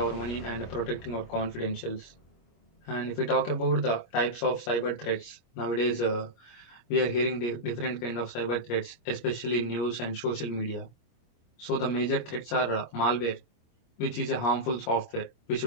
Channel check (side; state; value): right; late; 25 ms